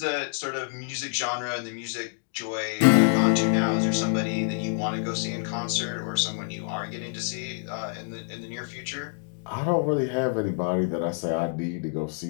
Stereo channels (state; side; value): silent; right; digital silence